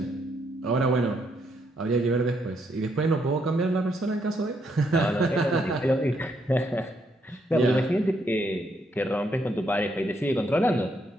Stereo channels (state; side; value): normal; both; correlation 0.75